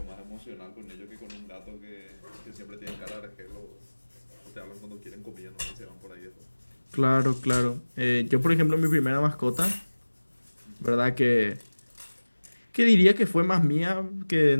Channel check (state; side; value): inverted; both; correlation -1.00